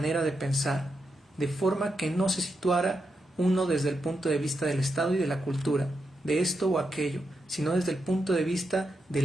de pensar, de forma que no se situara uno desde el punto de vista del Estado y de la cultura, de esto o aquello, sino desde el punto de vista de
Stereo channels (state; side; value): normal; both; correlation 0.85